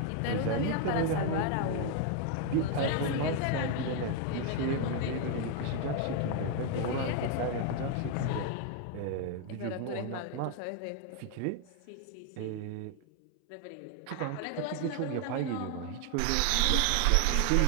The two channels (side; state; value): both; different; correlation 0.00